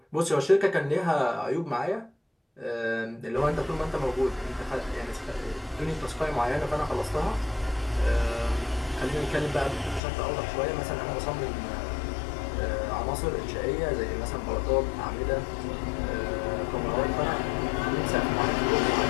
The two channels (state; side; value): drops out; right; at 10.0 s